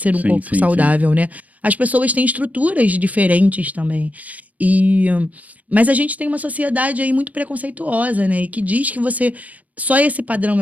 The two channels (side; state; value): left; late; 0.072 ms